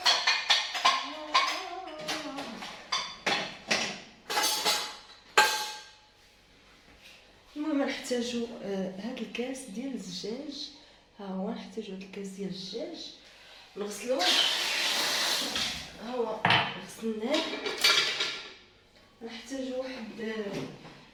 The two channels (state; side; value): identical; both; correlation 1.00